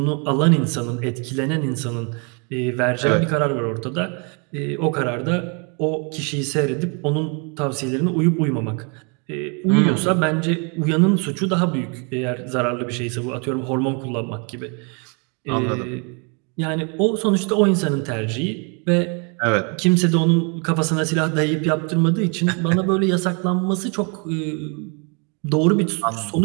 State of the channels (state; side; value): quieter; left; 35.5 dB